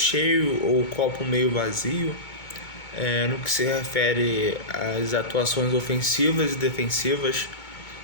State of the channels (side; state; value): right; late; 2.2 ms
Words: ou o copo meio vazio, no que se refere às atuações ofensivas e defensivas